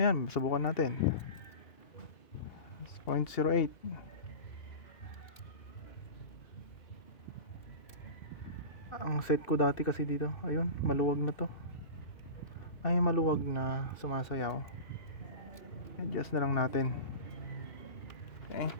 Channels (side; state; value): right; late; 2.6 ms